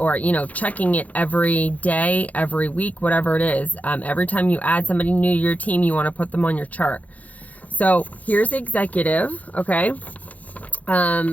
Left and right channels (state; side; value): late; right; 0.073 ms